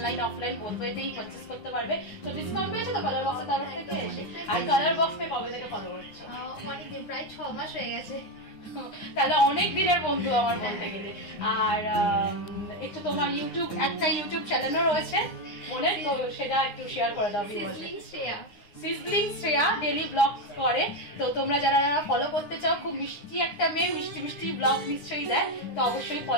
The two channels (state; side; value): late; right; 9.6 ms